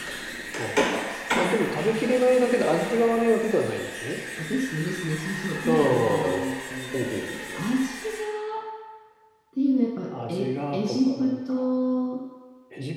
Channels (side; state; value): both; identical; correlation 1.00